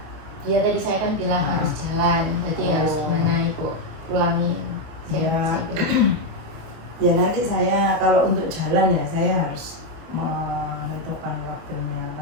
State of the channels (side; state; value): left; late; 25 ms